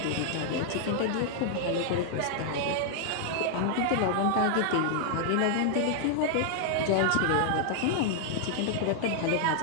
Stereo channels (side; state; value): both; different; correlation 0.00